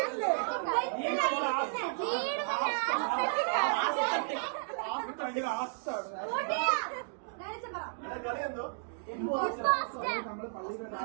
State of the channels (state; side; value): silent; left; digital silence